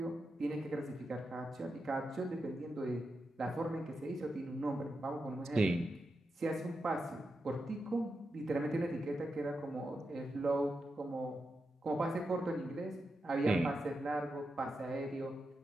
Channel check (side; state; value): both; normal; correlation 0.88